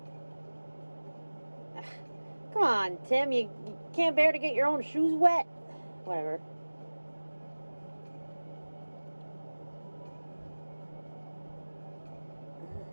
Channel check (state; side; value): inverted; both; correlation -1.00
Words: Come on, Tim. You can't bear to get your own shoes wet? Whatever.